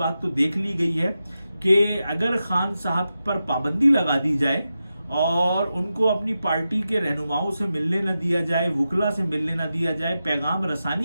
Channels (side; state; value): both; inverted; correlation -0.90